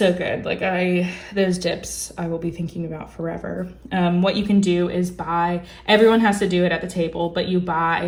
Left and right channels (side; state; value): both; identical; correlation 1.00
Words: good. Like those dips I will be thinking about forever. What you can do is everyone has to do it at the table, but you